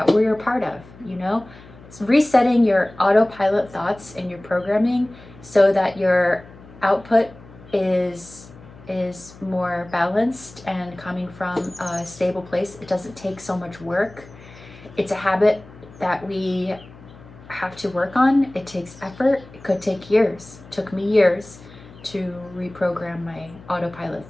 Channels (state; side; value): noise; left; hum, 21 dB below the sound